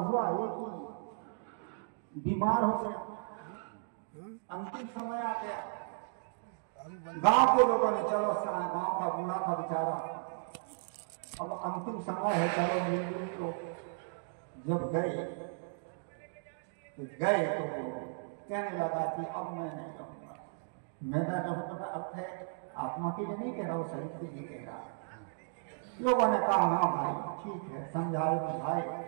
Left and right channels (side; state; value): left; silent; digital silence